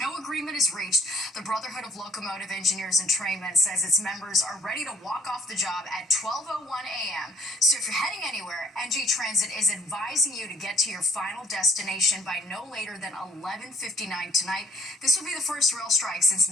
agreement is reached, the Brotherhood of Locomotive Engineers and Trainmen says its members are ready to walk off the job at 12:01 a.m. So if you're heading anywhere, NJ Transit is advising you to get to your final destination by no later than 11:59 tonight. This will be the first rail strike since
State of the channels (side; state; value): both; normal; correlation 0.60